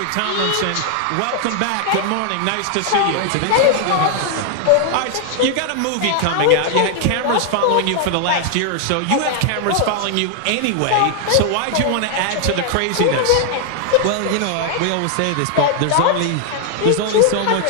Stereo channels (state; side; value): different; both; correlation 0.00